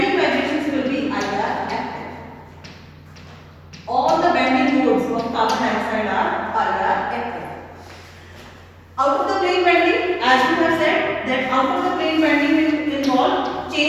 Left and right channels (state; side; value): identical; both; correlation 1.00